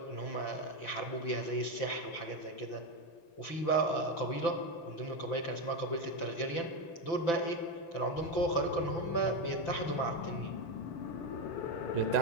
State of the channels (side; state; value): right; late; 5.9 ms